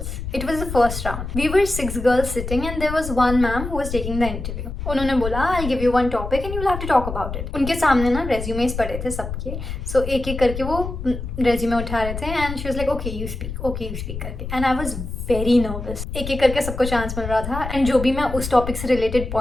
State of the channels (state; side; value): noise; left; rumble, 7 dB below the sound